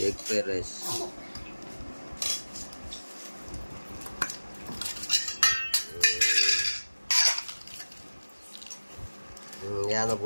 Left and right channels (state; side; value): inverted; both; correlation -1.00